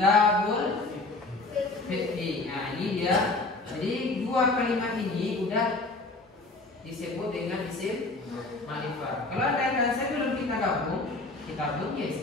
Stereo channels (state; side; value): quieter; right; 3.2 dB